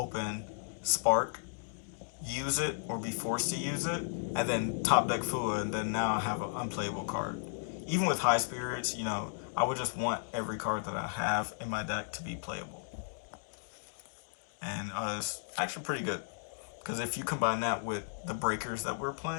Spark, use it, or be forced to use it, and then top deck Fua, and then now I have an unplayable card. Even with High Spirits, I would just want every card that I have in my deck to be playable. And it's actually pretty good, because if you combine that with the breakers that we're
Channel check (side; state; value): right; silent; digital silence